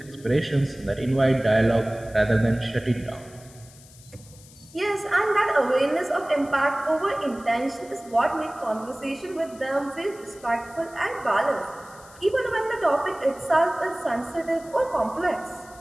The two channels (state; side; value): noise; left; hiss, 23 dB below the sound